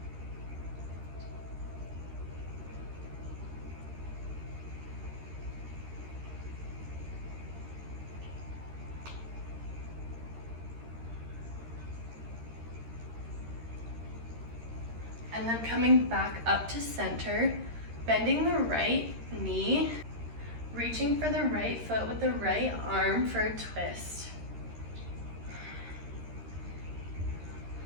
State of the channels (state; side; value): late; left; 13 ms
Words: And then coming back up to center, bending the right knee, reaching for the right foot with the right arm for a twist.